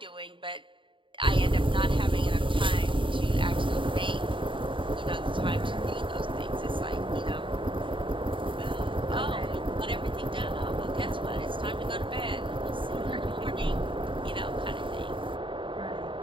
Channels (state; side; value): late; left; 0.24 ms